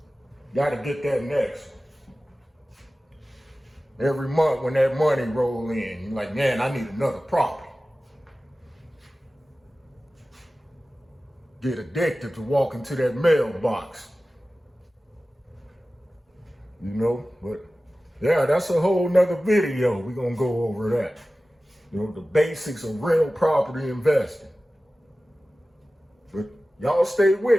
Got to get that next one. every month when that money roll in. You're like, man, I need another property. Get addicted to walking to that mailbox. You know, but yeah, that's a whole nother video. We're gonna go over that. You know, the basics of real property investing. But y'all stay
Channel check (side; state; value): both; normal; correlation 0.96